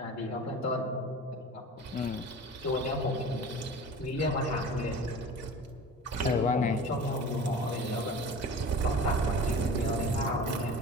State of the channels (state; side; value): normal; both; correlation 0.38